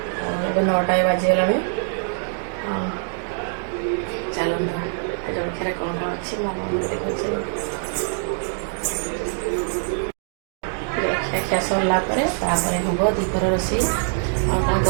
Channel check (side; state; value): left; silent; digital silence